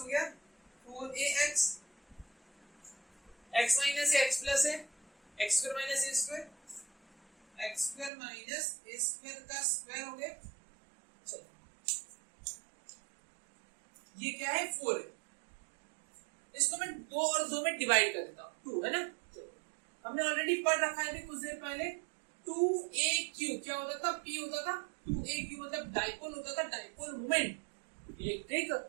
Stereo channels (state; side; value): drops out; left; at 8.1 s